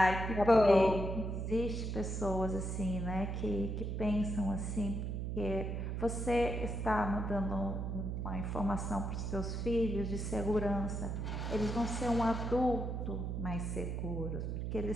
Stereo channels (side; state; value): right; noise; hum, 2 dB below the sound